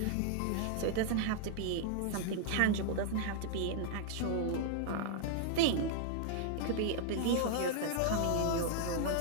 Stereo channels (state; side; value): different; both; correlation 0.00